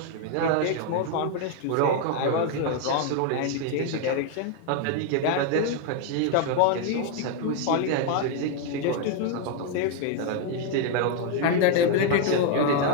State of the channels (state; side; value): different; both; correlation 0.00